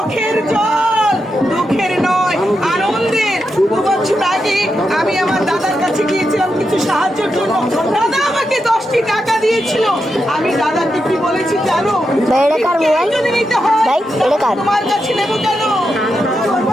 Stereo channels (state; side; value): normal; both; correlation 0.86